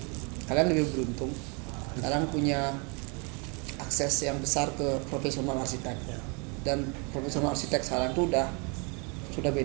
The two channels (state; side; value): quieter; left; 33.3 dB